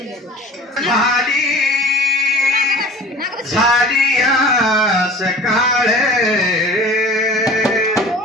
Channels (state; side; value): normal; both; correlation 0.41